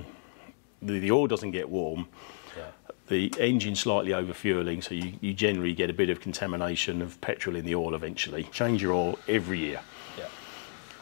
oil doesn't get warm. Yeah. The engine slightly over-fueling, so you generally get a bit of contamination of petrol in the oil eventually. Change your oil every year. Yeah.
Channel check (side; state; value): right; silent; digital silence